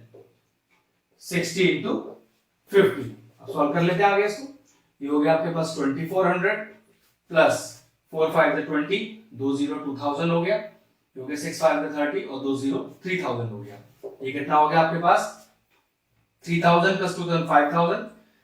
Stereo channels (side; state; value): both; identical; correlation 1.00